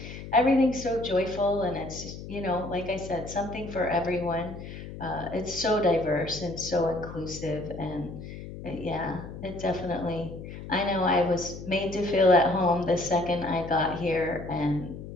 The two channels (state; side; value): noise; left; hum, 11 dB below the sound